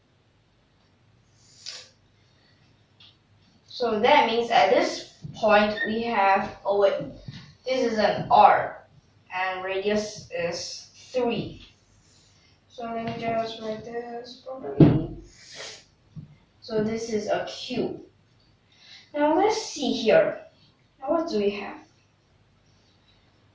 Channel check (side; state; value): both; identical; correlation 1.00